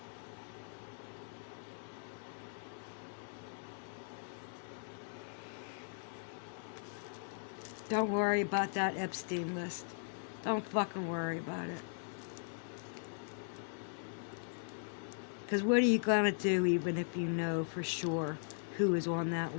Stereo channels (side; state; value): right; silent; digital silence